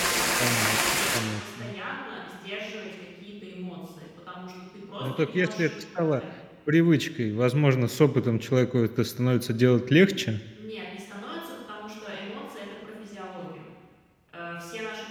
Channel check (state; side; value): identical; both; correlation 1.00